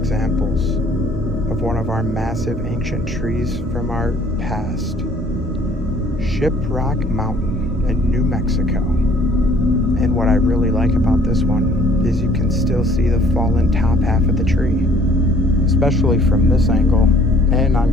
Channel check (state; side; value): normal; both; correlation 0.57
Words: of one of our massive ancient trees from our past. Shiprock Mountain in New Mexico. And what I really like about this one is you can still see the fallen top half of the tree, especially from this angle and